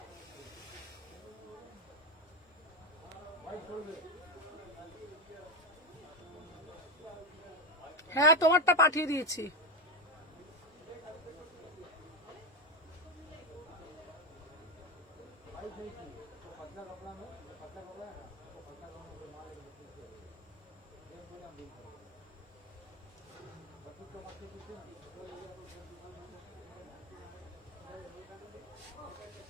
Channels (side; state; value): both; normal; correlation 0.11